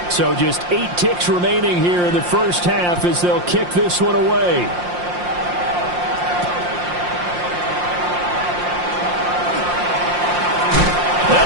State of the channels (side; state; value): left; late; 5.7 ms